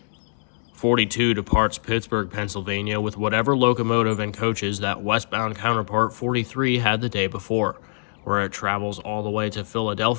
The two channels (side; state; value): right; silent; digital silence